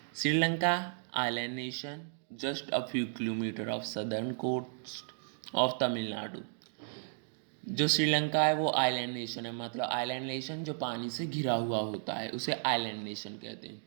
Sri Lanka island nation just a few kilometer off southern coast of Tamil Nadu. जो श्रीलंका है वो आइलैंड नेशन है, मतलब आइलैंड नेशन जो पानी से घिरा हुआ होता है उसे आइलैंड नेशन कहते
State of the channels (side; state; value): left; silent; digital silence